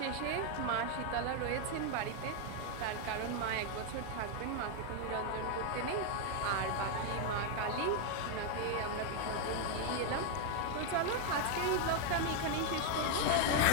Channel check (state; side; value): different; both; correlation 0.01